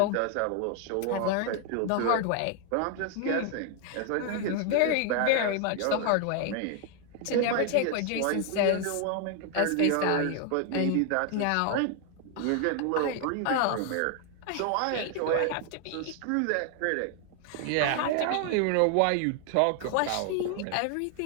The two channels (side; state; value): both; different; correlation 0.00